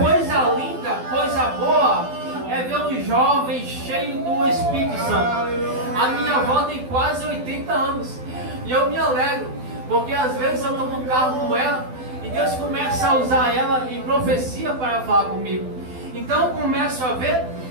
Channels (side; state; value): left; late; 12 ms